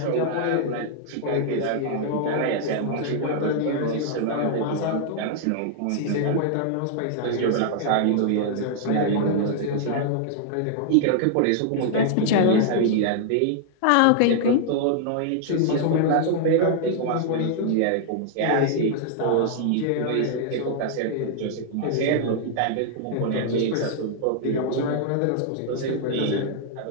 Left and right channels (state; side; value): different; both; correlation -0.01